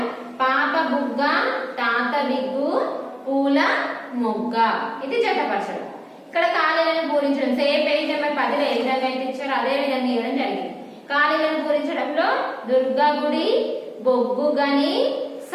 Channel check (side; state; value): both; identical; correlation 1.00